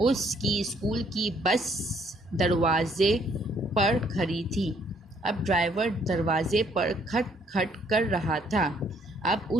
स्कूल की बस दरवाज़े पर खड़ी थी। अब ड्राइवर दरवाज़े पर खट खट कर रहा था। अब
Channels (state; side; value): normal; both; correlation 0.66